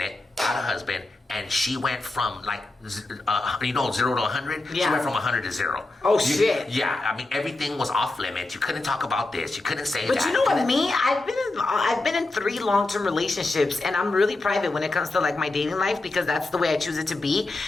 got a husband, and she went from 0 to 100. Yeah. She went from 100 to 0. Oh shit. Yeah, I mean everything was off limits. You couldn't talk about this. You couldn't say that. But you know what, me? I've been in 3 long-term relationships, and I'm really private when it comes to like my dating life because that's the way I choose it to be.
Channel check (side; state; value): right; quieter; 3.0 dB